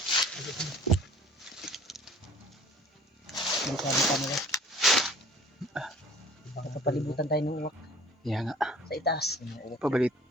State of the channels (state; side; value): normal; both; correlation 0.49